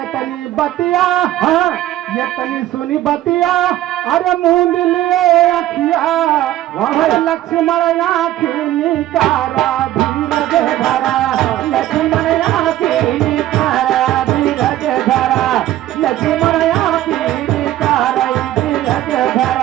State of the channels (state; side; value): quieter; left; 13.9 dB